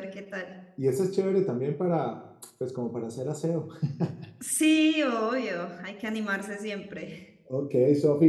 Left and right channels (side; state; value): both; identical; correlation 1.00